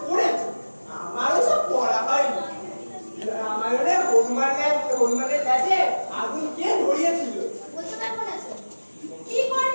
পড়েছো, আমারও সব পড়া হয়নি। রামায়ণে হনুমানের কাছে আগুন কে ধরিয়েছিল? বলতে পারবো না স্যার। কি করে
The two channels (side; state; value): both; inverted; correlation -1.00